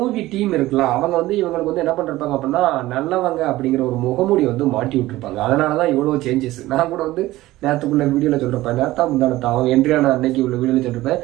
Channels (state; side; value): quieter; left; 17.1 dB